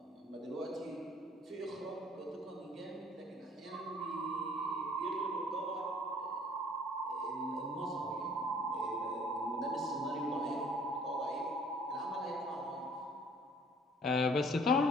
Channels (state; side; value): normal; both; correlation 0.55